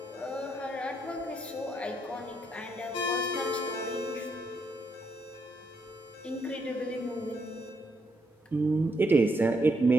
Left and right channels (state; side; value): normal; both; correlation 0.77